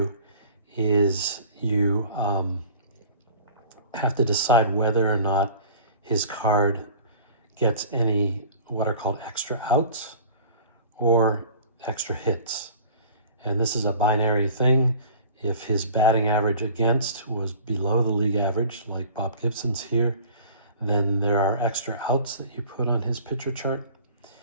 is you have to decide whether or not his card gets any what are called extra outs or extra hits. And this is a binary thing. If his batting average against was below the league average, like Bob Gibson's here, then there are extra outs that you put on his pitcher chart.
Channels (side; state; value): both; inverted; correlation -0.45